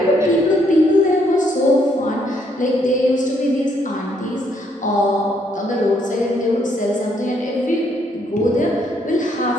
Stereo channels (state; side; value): normal; both; correlation 0.71